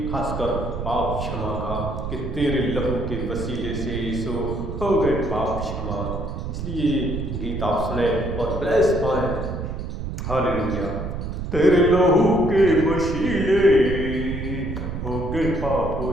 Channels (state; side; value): noise; right; rumble, 5 dB below the sound